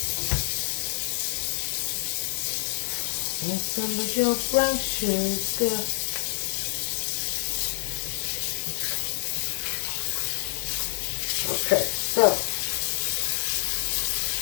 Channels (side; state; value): right; silent; digital silence